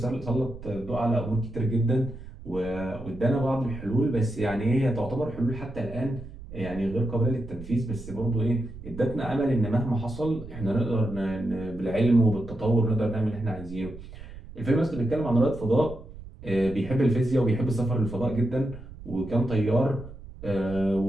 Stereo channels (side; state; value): right; noise; rumble, 15 dB below the sound